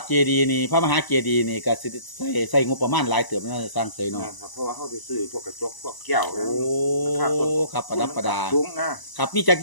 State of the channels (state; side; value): late; right; 1.0 ms